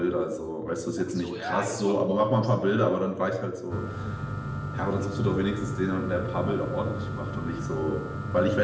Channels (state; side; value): identical; both; correlation 1.00